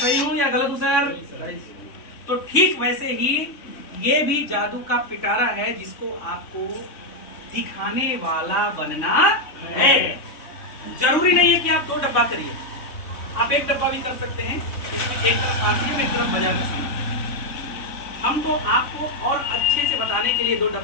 हूँ या गलत हूँ सर? तो ठीक वैसे ही ये भी जादू का पिटारा है जिसको आपको दिखाने वाला बनना है। जरूरी नहीं है कि आप 2 डब्बा करिए, आप 1 डब्बा भी कर सकते हैं। इसमें एक तरफ आरसीएम, एक तरफ बाजार का सामान। हम तो आपको और अच्छे से बताने के लिए 2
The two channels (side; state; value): right; late; 3.6 ms